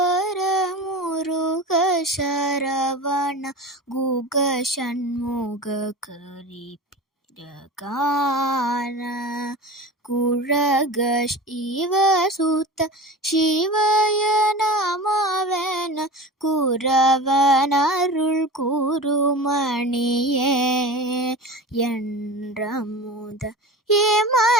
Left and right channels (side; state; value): both; normal; correlation 0.32